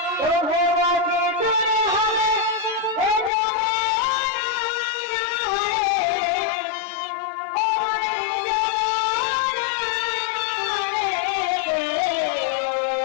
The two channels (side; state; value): right; drops out; at 3.3 s